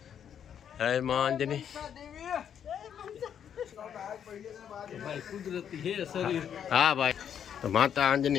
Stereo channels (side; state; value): right; quieter; 8.7 dB